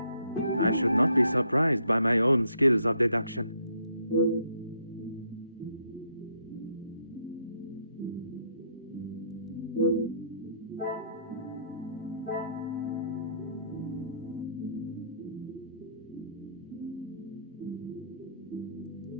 I should not be surprised by my own skills of deduction.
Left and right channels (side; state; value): both; inverted; correlation -0.68